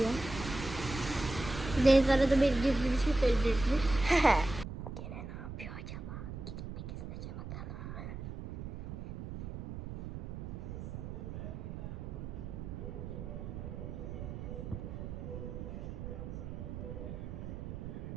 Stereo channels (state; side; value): noise; right; rumble, 7 dB below the sound